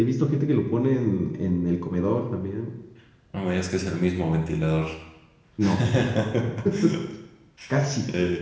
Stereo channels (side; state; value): both; identical; correlation 1.00